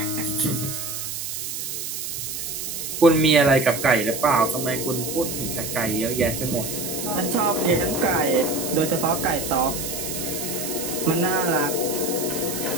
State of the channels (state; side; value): noise; right; hiss, 5 dB below the sound